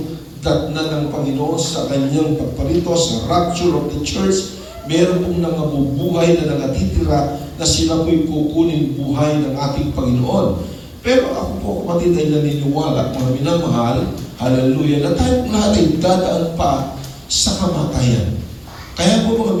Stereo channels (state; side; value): identical; both; correlation 1.00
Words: datna ng Panginoon sa kanyang pagparito, sa rapture of the church, meron pong nangabubuhay na nangatitira na sila po'y kukunin buhay ng ating Panginoon. Pero ako po, kapatid, ay naniniwala, mga minamahal, hallelujah, na tayo lahat ay dadaan pa sa kamatayan. Kaya po, mga